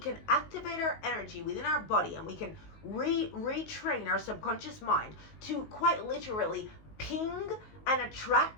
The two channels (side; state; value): right; late; 19 ms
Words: activate our energy within our body, and we can retrain our subconscious mind to quite literally ping and